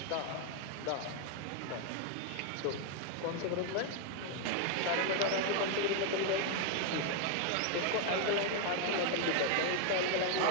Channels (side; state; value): both; different; correlation 0.01